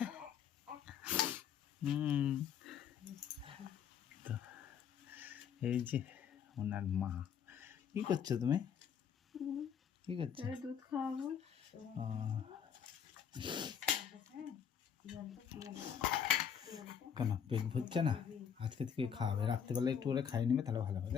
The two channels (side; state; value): right; quieter; 7.9 dB